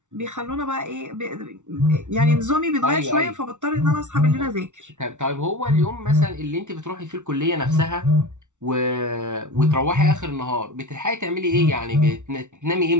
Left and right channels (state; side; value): late; left; 0.85 ms